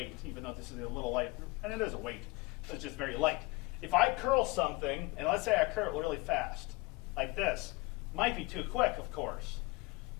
even though this is a little light, and it is a weight, so it's just very light. If I curl something, and let's say I curl it really fast, like this, might be too quick, of course.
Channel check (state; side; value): quieter; right; 23.4 dB